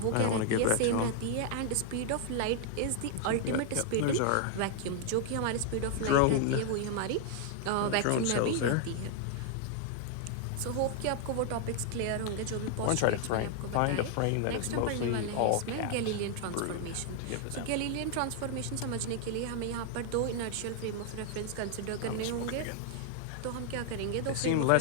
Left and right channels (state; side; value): different; both; correlation 0.00